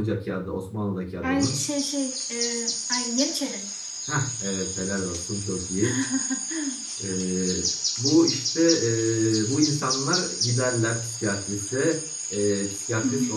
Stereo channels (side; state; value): both; identical; correlation 1.00